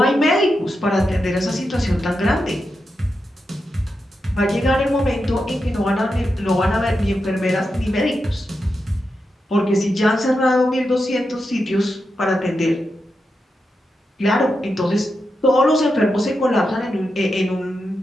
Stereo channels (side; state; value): both; normal; correlation 0.87